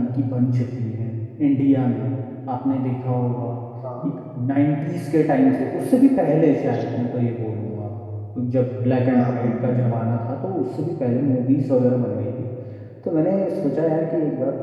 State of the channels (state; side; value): identical; both; correlation 1.00